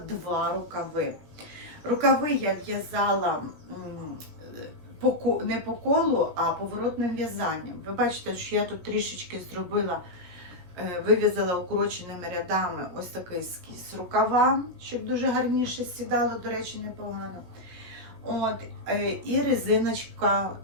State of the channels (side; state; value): left; late; 17 ms